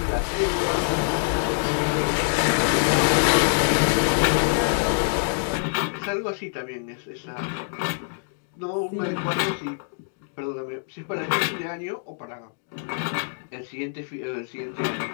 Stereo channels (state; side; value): silent; right; digital silence